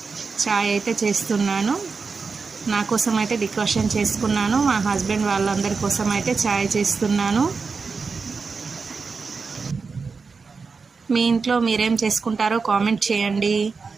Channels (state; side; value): quieter; left; 4.8 dB